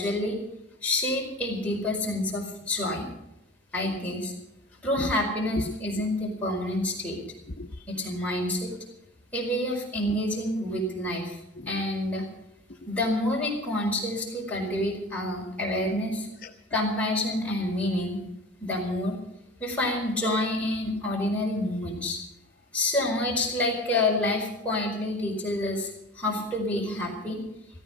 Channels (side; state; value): both; normal; correlation 0.38